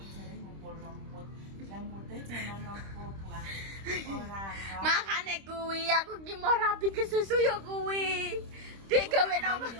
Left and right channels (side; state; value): left; late; 26 ms